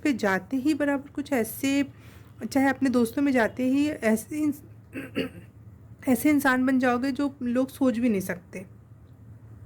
जाते ही बराबर कुछ ऐसे, चाहे अपने दोस्तों में जाते ही ऐसे ऐसे इंसान बन जाओगे जो लोग सोच भी नहीं सकते।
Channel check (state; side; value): identical; both; correlation 1.00